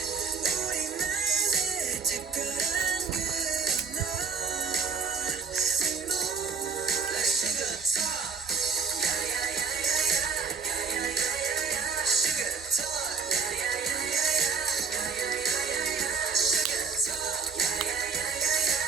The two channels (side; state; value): left; quieter; 5.4 dB